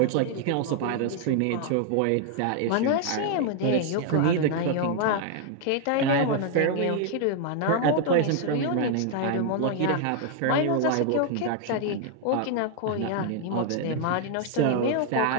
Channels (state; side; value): different; both; correlation 0.00